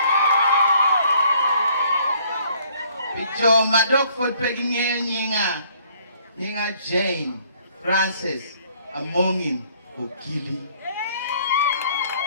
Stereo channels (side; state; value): both; inverted; correlation -0.62